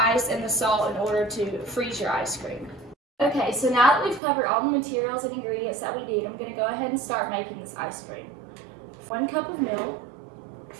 and the salt in order to freeze your ice cream. Okay, so now that we've covered all the materials and ingredients that we need, I'm going to go ahead and start making this ice cream. 1 cup of milk,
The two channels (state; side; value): drops out; left; at 4.2 s